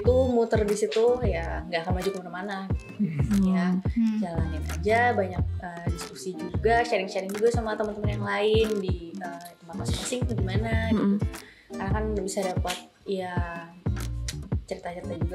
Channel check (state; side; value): identical; both; correlation 1.00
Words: muter di situ ya nggak akan maju kemana-mana ya. Jalanin aja, banyak diskusi juga, sharing juga sama teman-teman yang lain di tempat masing-masing tuh gimana gitu. Karena kan bisa dapat ya cerita-cerita